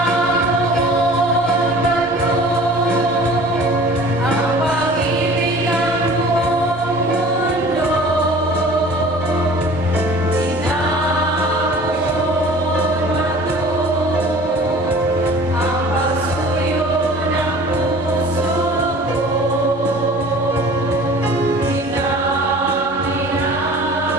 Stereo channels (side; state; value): both; normal; correlation 0.45